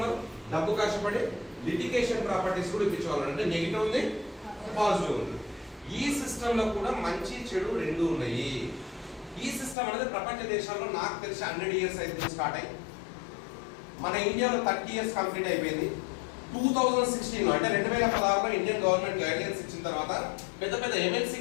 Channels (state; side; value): drops out; right; at 9.8 s